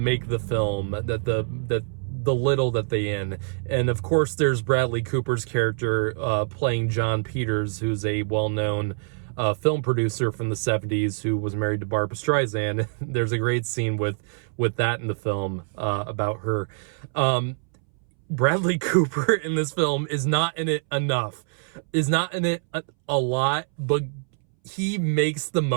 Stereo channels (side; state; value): left; silent; 62 dB below the other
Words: the film that the little that they in. And of course, there's Bradley Cooper's character playing John Peters, who's a well-known film producer from the 70s who was married to Barbra Streisand. There's a great scene with that in the film about her. Bradley Cooper in this film is not in it enough, is not in it a lot, but he makes the